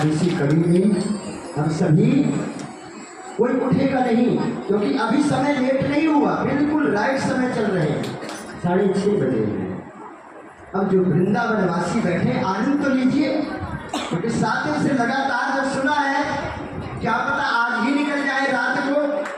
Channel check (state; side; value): identical; both; correlation 1.00